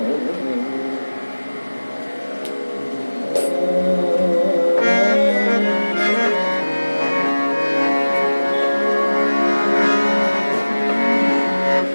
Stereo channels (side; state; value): both; inverted; correlation -1.00